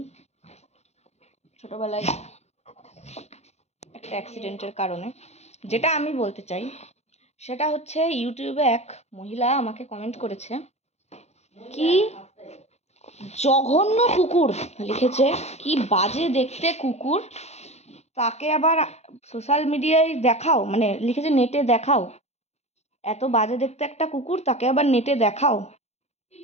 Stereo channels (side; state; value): right; late; 0.31 ms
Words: ছোটবেলায় একটা অ্যাক্সিডেন্টের কারণে। যেটা আমি বলতে চাই সেটা হচ্ছে, ইউটিউবে এক মহিলা আমাকে কমেন্ট করেছে, কি জঘন্য কুকুর লিখেছে, কি বাজে দেখতে কুকুর, তাকে আবার সোশ্যাল মিডিয়ায় দেখাও, মানে লিখেছে নেটে দেখাও, এত বাজে দেখতে একটা কুকুর, তাকে আবার নেটে দেখাও।